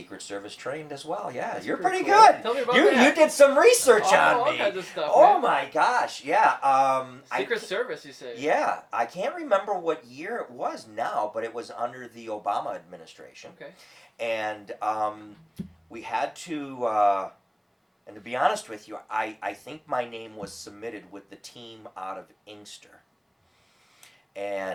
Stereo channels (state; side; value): identical; both; correlation 1.00